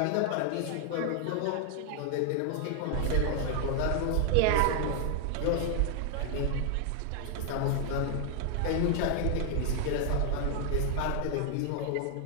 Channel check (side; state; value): both; different; correlation 0.00